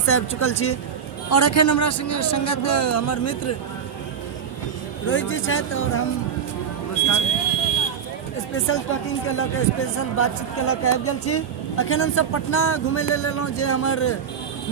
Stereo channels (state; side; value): quieter; left; 7.5 dB